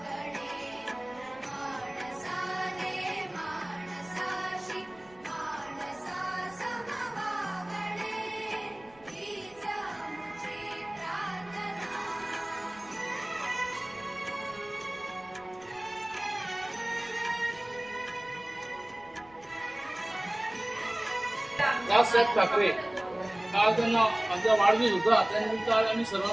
रावसाहेब ठाकरे आज त्यांना आमचा वाढदिवस होता त्यानिमित्त आज आम्ही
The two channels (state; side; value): noise; right; rumble, 28 dB below the sound